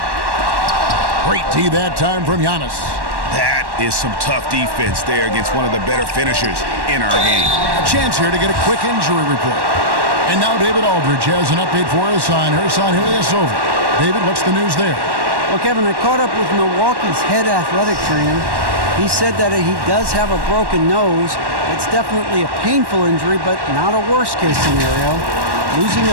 Great tee that time from Giannis. That is some tough defense there against one of the better finishers in our game. A chance here to get a quick injury report. And now David Aldridge has an update for us on Ersan Ilyasova. David, what's the news there? Well, Kevin, I caught up with Milwaukee's head athletic trainer. He said that he does have a broken nose. It's definitely a painful injury, but not a worst-case scenario. Losing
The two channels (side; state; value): left; late; 1.1 ms